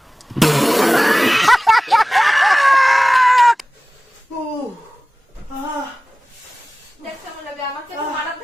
ও আহ দেখ কেমন লাগে। আমাকে তো মারার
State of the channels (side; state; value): both; normal; correlation 0.98